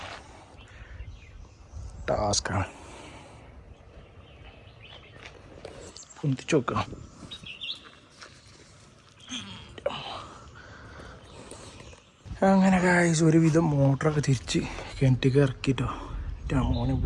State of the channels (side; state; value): both; identical; correlation 1.00